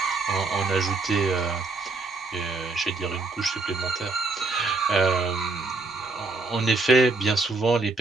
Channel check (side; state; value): left; quieter; 3.5 dB